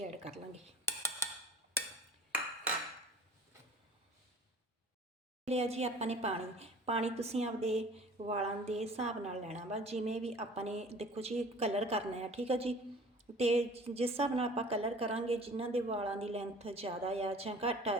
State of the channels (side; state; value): both; normal; correlation 0.46